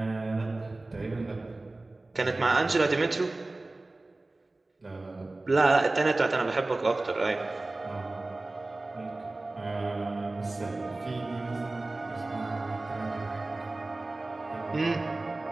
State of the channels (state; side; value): quieter; left; 3.0 dB